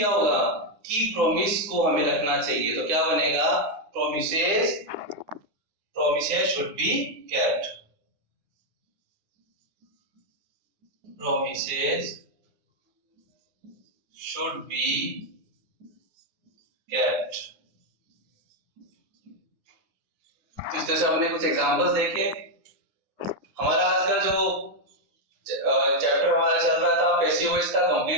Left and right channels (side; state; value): left; late; 9.8 ms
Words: होगा, कि प्रॉमिस को हमें रखना चाहिए। तो क्या बनेगा, promises should be kept। promises should be kept। तो इस तरह से हमने कुछ एग्जांपल्स देखे। हमारा आज का जो चैप्टर हमारा चल रहा था पैसिव वॉइस का,